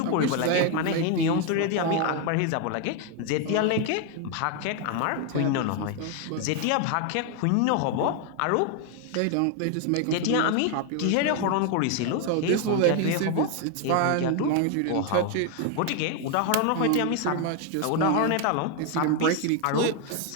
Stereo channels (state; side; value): different; both; correlation 0.01